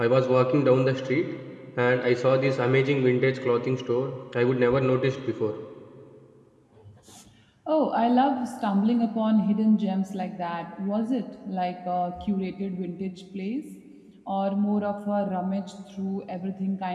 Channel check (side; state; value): both; identical; correlation 1.00